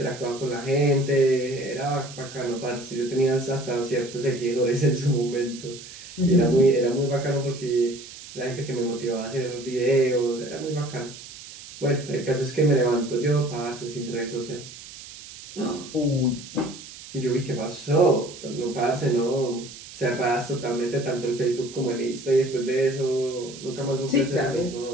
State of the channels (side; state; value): right; noise; hiss, 15 dB below the sound